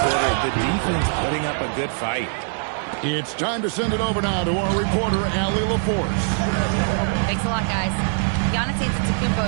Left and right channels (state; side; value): silent; left; 64 dB below the other